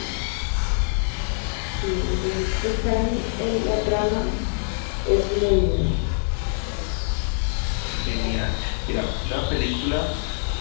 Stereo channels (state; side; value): silent; right; 62 dB below the other